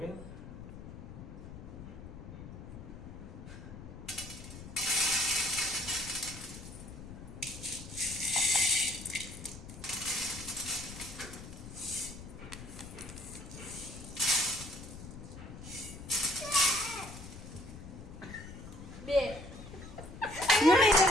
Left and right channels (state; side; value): noise; left; rumble, 12 dB below the sound